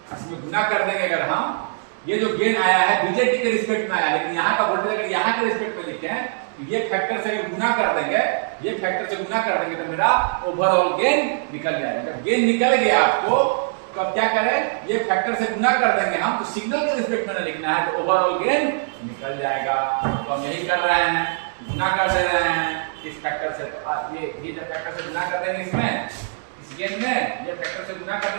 इसमें गुना कर देंगे। अगर हम ये जो गेन आया है बीजेटी के रिस्पेक्ट में आया, लेकिन यहाँ का वोल्टेज अगर यहाँ के रिस्पेक्ट में लिखे तो ये फैक्टर से अगर गुना कर देंगे, ये फैक्टर से गुना कर देंगे तो मेरा ओवरऑल गेन निकल जाएगा। जब गेन निकल गया आपको तो अब क्या करें? ये फैक्टर से गुना कर देंगे हम, तो सिग्नल के रिस्पेक्ट में लिखना है तो ओवरऑल गेन निकल जाएगा। तो हम यही कर रहे हैं, गुना कर दे रहे हैं इस फैक्टर से। तो ये जब फैक्टर से गुना कर देंगे इसमें, इस गेन में ये फैक्टर से गुना कर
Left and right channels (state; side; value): silent; left; digital silence